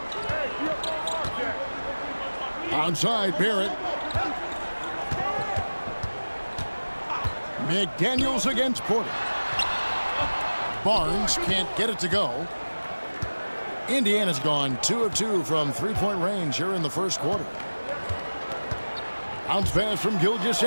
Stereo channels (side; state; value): both; inverted; correlation -1.00